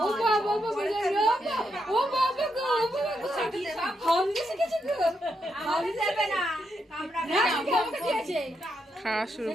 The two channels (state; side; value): normal; both; correlation 0.81